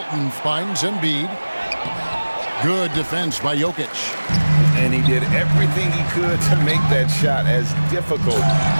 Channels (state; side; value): inverted; both; correlation -1.00